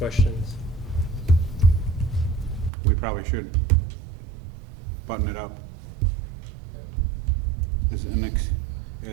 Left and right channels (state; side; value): drops out; left; at 2.7 s